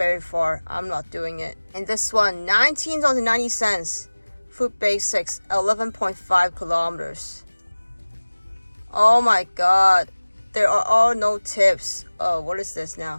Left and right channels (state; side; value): inverted; both; correlation -1.00